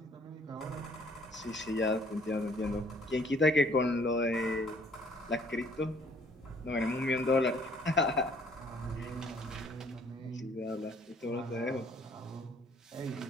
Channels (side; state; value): both; normal; correlation 0.60